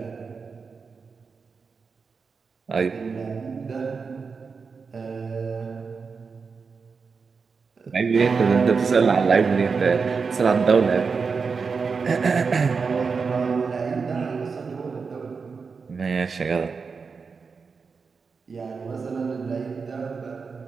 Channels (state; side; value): quieter; left; 5.1 dB